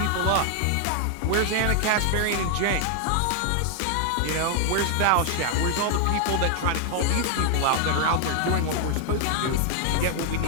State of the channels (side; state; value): both; different; correlation 0.00